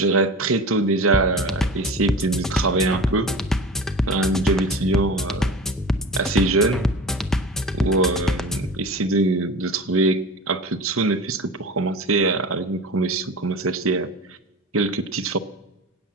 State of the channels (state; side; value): normal; both; correlation 0.33